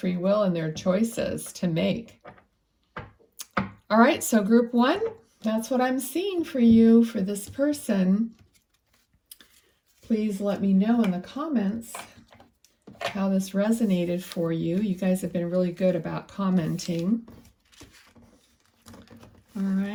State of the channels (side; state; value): both; identical; correlation 1.00